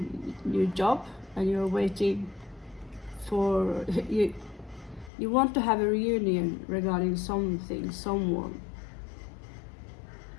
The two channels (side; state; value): right; drops out; at 5.1 s